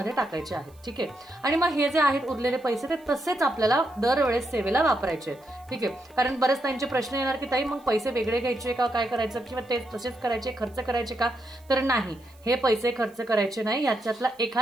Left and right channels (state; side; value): noise; right; hiss, 29 dB below the sound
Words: टाकायचे आहेत. ठीक आहे. आणि मग हे जे आहेत उरलेले पैसे ते तसेच आपल्याला दरवेळेस सेवेला वापरायचे आहेत. ठीक आहे. कारण बरेच त्यांचे प्रश्न येणार की ताई मग पैसे वेगळे घ्यायचे का, काय करायचं, किंवा ते तसेच करायचे, खर्च करायचे का, तर नाही, हे पैसे खर्च करायचे नाही. याच्यातला